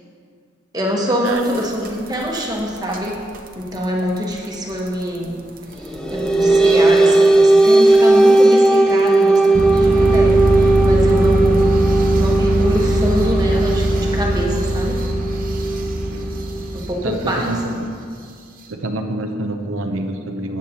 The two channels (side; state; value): both; normal; correlation 0.89